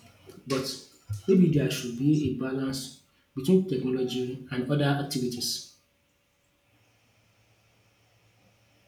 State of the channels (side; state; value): both; identical; correlation 1.00